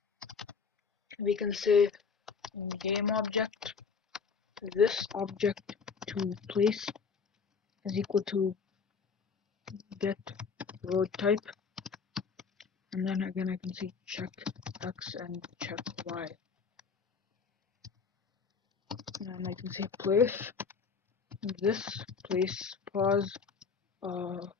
we can say game object this object to place is equal to get road type, and then again I can say check x and check y, and then I can say place this place pause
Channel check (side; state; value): right; quieter; 5.5 dB